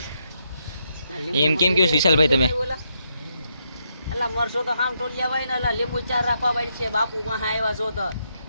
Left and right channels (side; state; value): both; inverted; correlation -0.79